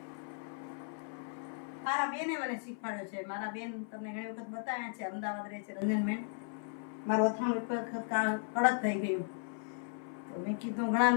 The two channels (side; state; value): right; silent; 54 dB below the other